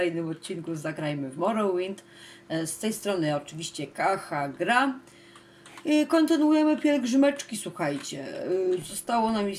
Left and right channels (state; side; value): identical; both; correlation 1.00